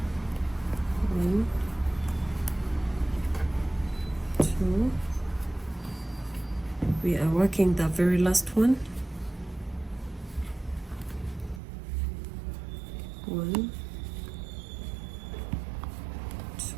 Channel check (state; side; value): drops out; left; at 11.6 s